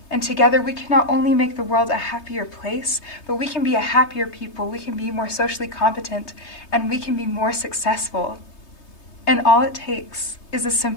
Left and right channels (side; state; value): right; late; 3.2 ms